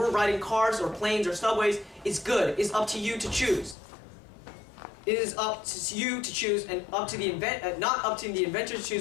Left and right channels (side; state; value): right; drops out; at 3.8 s